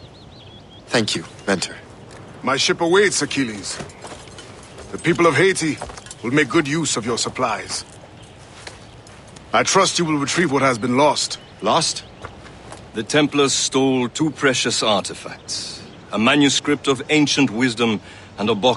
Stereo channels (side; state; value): both; identical; correlation 1.00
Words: Thank you, Mentor. My ship awaits, Achilles. The people of Haiti will make good use of your supplies. I trust you will retrieve what has been lost. Lost? The Templars stole two precious artifacts. A manuscript of ancient wisdom and a